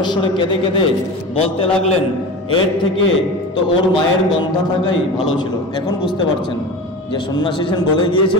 কেঁদে কেঁদে বলতে লাগলেন, এর থেকে তো ওর মায়ের গন্ধা থাকাই ভালো ছিল। এখন বুঝতে পারছেন যে সন্ন্যাসী সেন বলে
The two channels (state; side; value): normal; both; correlation 0.30